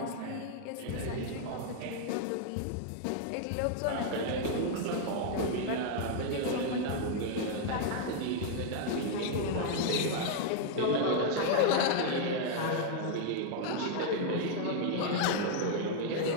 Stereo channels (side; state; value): both; different; correlation -0.01